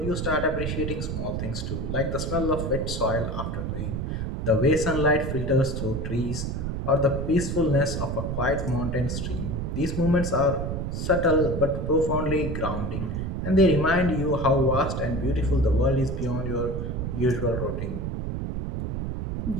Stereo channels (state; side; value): noise; right; rumble, 3 dB below the sound